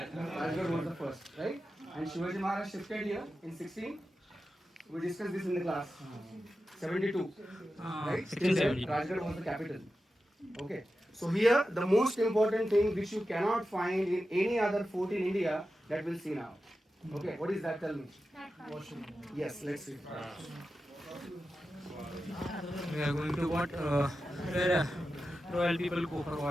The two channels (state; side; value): normal; both; correlation 0.92